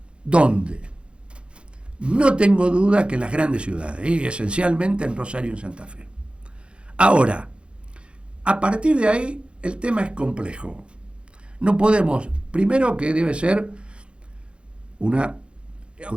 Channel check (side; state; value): left; late; 0.057 ms